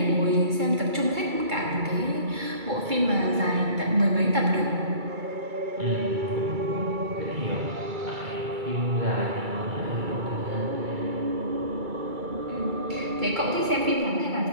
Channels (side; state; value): left; late; 2.3 ms